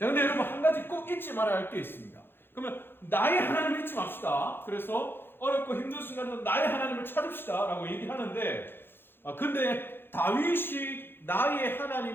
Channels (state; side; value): late; right; 0.10 ms